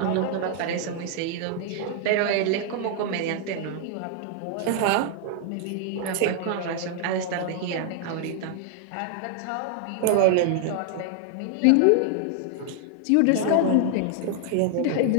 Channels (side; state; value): both; different; correlation 0.00